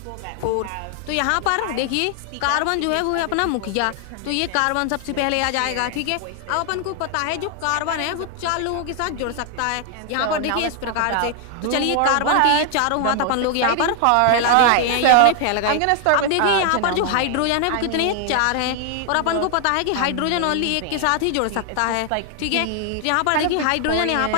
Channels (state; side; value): different; both; correlation 0.00